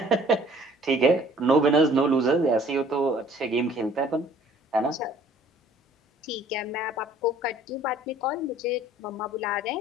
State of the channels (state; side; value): normal; both; correlation 0.55